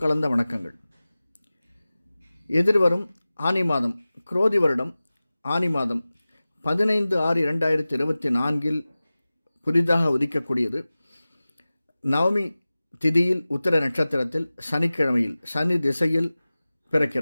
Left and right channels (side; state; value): both; inverted; correlation -0.97